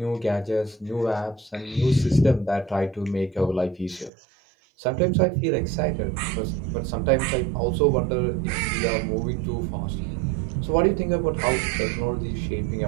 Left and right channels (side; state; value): left; drops out; at 4.1 s